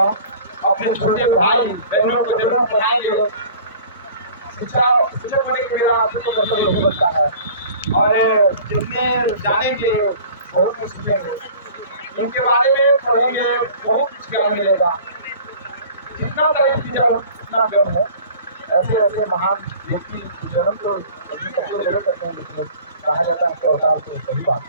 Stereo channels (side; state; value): both; inverted; correlation -0.45